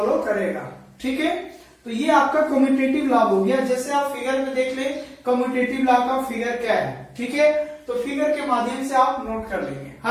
करेगा, ठीक है। तो ये आपका कम्यूटेटिव लॉ हो गया। जैसे आप फिगर में देख ले कम्यूटेटिव लॉ का फिगर क्या है, ठीक है। तो फिगर के माध्यम से आप नोट कर लेंगे,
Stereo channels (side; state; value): both; identical; correlation 1.00